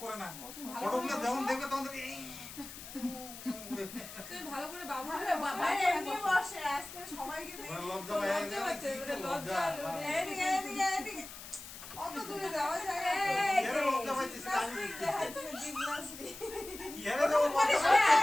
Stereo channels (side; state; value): left; noise; hiss, 13 dB below the sound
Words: করে না ফটোগুলো যেমন দেখবে তখন দেখবে, এই। তুমি ভালো করে বাবু আরে এমনি বসে আজকে সবাইকে দেখি আমার লজ্জা পায় না। লজ্জা। এদিকে এদিকে এদিকে অত দূরে যাওয়া যায় না। এরে লজ্জা পাইতেছে না আমি। জিমনাস্টিক দেখাচ্ছে, জিমনাস্টিক। এরে দেবো লজ্জা